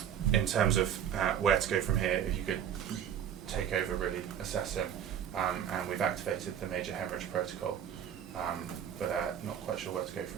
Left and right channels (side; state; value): left; quieter; 9.3 dB